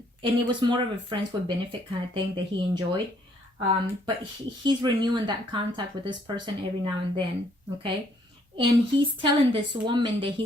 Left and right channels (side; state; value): both; normal; correlation 0.66